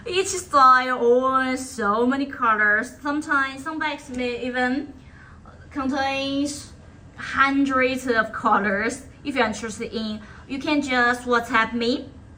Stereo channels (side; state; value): both; identical; correlation 1.00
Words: Each style owns so many colors. Sometimes some bikes may even contain hundreds of colors. If you're interested in, you can just WhatsApp me,